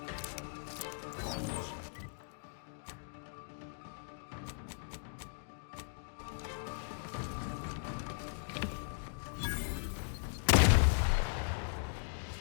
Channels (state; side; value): silent; right; digital silence